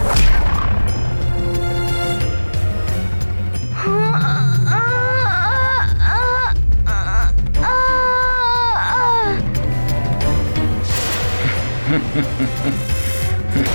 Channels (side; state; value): both; inverted; correlation -1.00